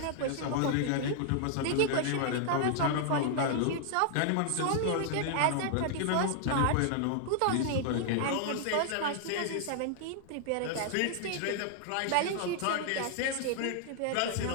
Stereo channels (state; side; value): different; both; correlation 0.00